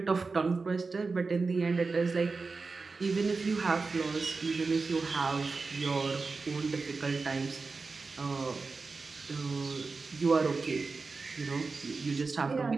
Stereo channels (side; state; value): left; quieter; 4.2 dB